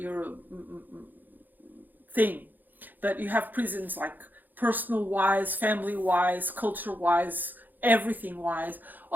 thing, but you have prisons like personal wise, family wise, culture wise, everything wise.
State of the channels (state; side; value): late; left; 0.086 ms